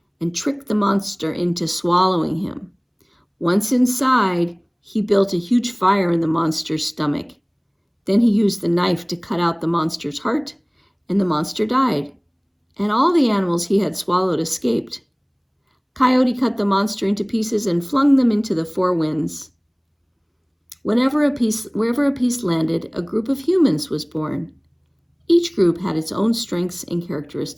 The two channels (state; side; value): identical; both; correlation 1.00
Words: and tricked the monster into swallowing him. Once inside, he built a huge fire in the monster's stomach. Then he used the knife to cut out the monster's heart, and the monster died, and all the animals he had swallowed escaped. Coyote cut the monster into pieces and flung them into the four winds. Wherever a piece landed, a group of humans was born. Each group had its own strengths and